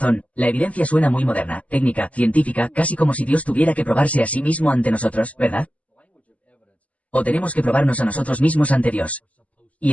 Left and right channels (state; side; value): late; right; 0.069 ms